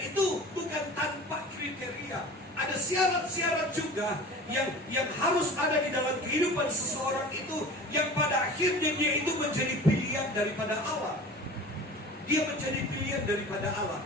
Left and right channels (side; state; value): both; normal; correlation 0.38